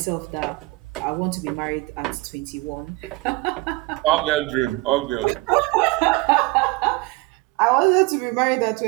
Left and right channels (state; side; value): quieter; left; 23.2 dB